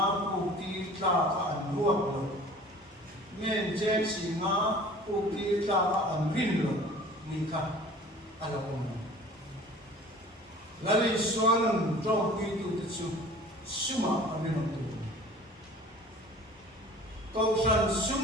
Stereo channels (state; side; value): normal; both; correlation 0.45